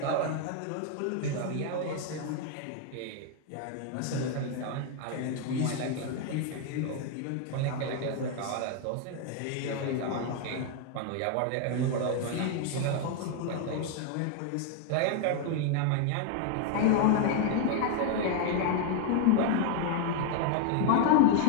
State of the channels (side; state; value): both; different; correlation 0.00